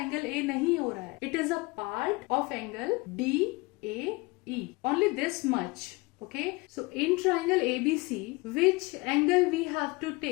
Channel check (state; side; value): quieter; right; 24.6 dB